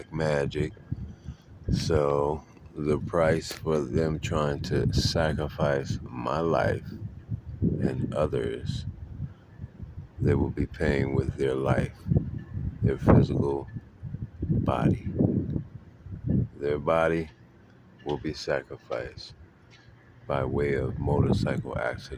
magic. So, the price for them trying to sacrifice my life and others, they will be paying with their life, their physical body. Their body will be sacrificed by way of motorcycle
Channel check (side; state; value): both; identical; correlation 1.00